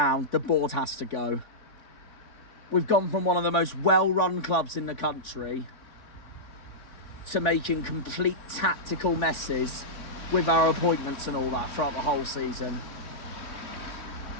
the board has to go. We've gone from one of the most well-run clubs in the country to making complete tactical messes with our appointments and all that throughout the whole season.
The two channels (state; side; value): late; right; 3.4 ms